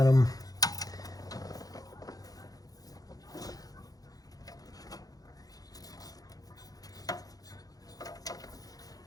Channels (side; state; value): right; late; 0.18 ms